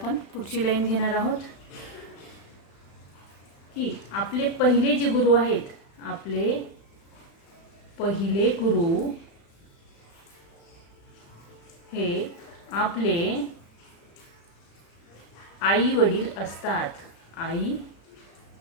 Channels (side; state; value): right; late; 36 ms